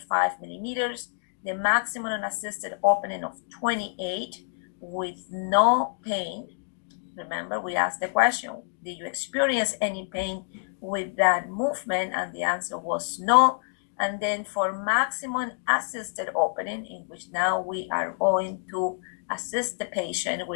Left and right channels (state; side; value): silent; right; digital silence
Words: millimeters, the maximum unassisted opening of 28 with no pain. Remember, we asked the question, did you experience any pain with that movement? And the answer was no. And then for maximum assisted opening, in which now we are going to assist the patient